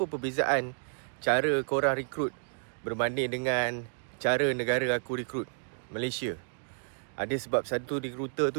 perbezaan cara korang rekrut berbanding dengan cara negara aku rekrut, Malaysia. Ada sebab satu rekruter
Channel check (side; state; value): left; silent; digital silence